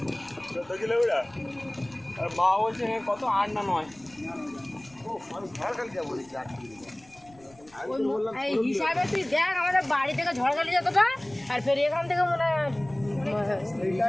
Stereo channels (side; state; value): left; noise; rumble, 27 dB below the sound